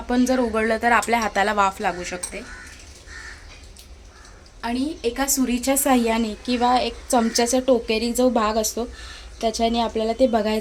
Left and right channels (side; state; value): both; identical; correlation 1.00